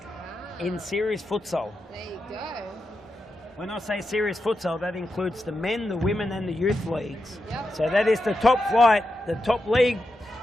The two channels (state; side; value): normal; both; correlation 0.87